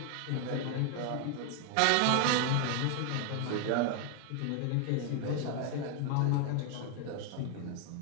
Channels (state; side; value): different; both; correlation 0.01